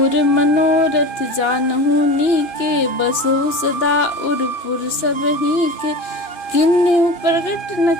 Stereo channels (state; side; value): late; right; 2.9 ms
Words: मनोरथ जानहु नीके, बसहु सदा उरपुर सब ही के, किन्हु प्रगट न